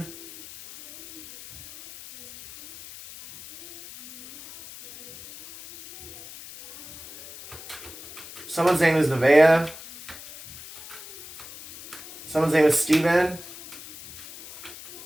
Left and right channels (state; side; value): noise; left; hiss, 16 dB below the sound